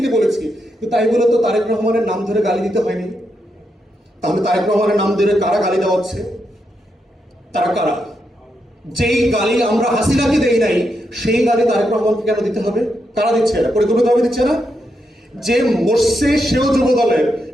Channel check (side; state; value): both; normal; correlation 0.83